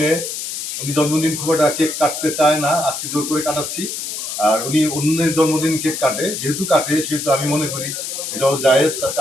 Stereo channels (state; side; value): noise; left; hiss, 5 dB below the sound